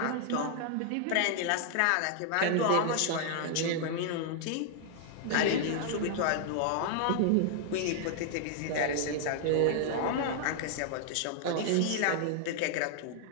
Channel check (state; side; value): different; both; correlation 0.00